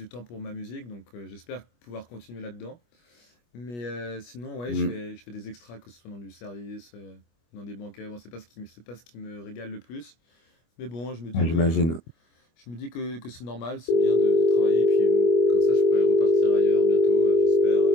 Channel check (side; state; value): right; late; 25 ms